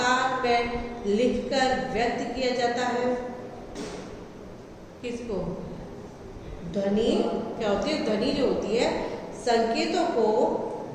में लिखकर व्यक्त किया जाता है। किसको? ध्वनि क्या होती है? ध्वनि जो होती है संकेतों को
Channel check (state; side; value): identical; both; correlation 1.00